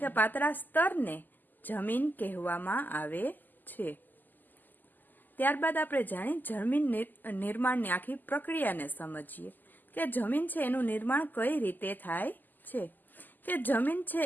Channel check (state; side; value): late; right; 0.087 ms